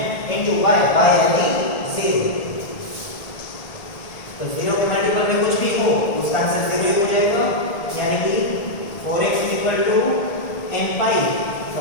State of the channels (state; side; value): late; right; 1.8 ms